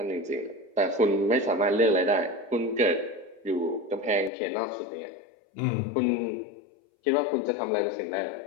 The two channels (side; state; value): right; drops out; at 4.3 s